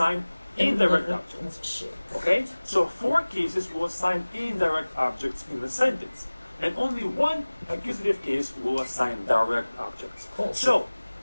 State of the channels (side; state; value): both; inverted; correlation -1.00